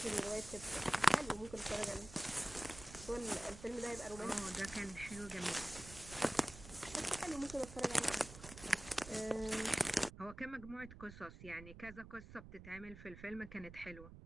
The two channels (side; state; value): right; noise; rumble, 14 dB below the sound